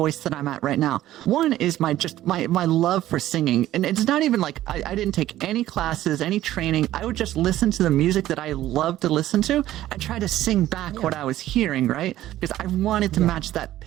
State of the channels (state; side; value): quieter; left; 13.9 dB